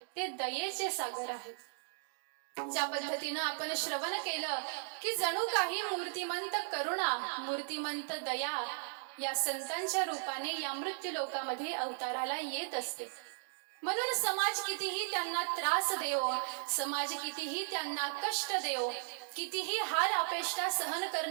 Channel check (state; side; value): silent; left; digital silence